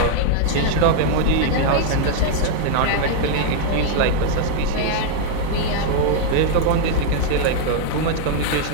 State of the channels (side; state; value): both; different; correlation 0.00